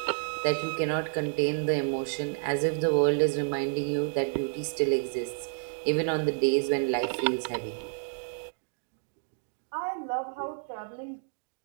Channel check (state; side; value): silent; left; 58 dB below the other